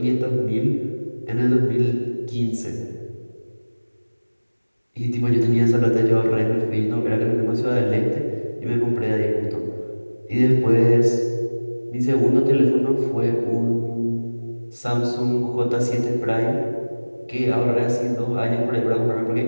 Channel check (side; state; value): both; inverted; correlation -1.00